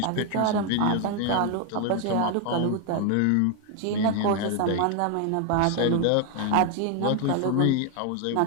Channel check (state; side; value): different; both; correlation 0.01